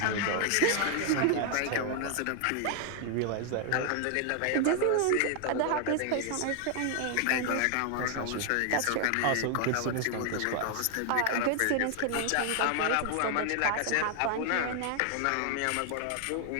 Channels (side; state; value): both; different; correlation 0.00